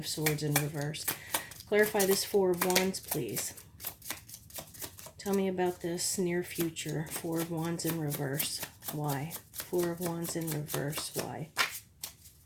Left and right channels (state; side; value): identical; both; correlation 1.00